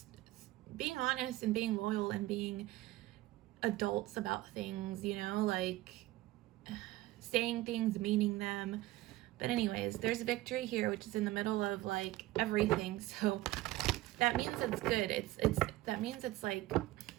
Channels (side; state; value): left; quieter; 17.5 dB